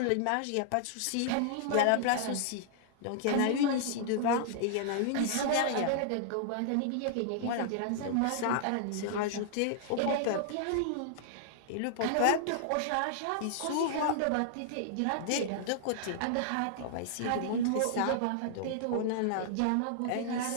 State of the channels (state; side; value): different; both; correlation -0.01